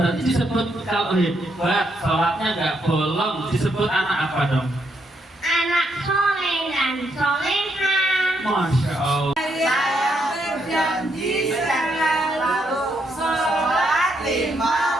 disebut kalau hebat sholatnya nggak bolong disebut anak apa dong? Anak soleh dan soleha. Masya Allah. Saya berjanji selalu sholat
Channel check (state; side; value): normal; both; correlation 0.77